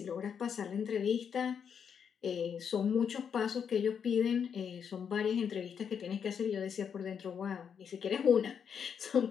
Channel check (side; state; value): right; quieter; 7.3 dB